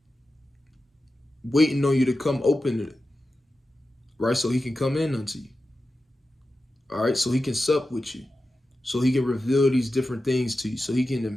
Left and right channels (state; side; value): normal; both; correlation 0.92